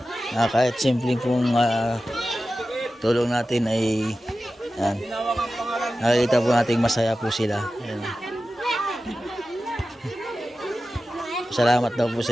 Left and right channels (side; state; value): both; normal; correlation 0.94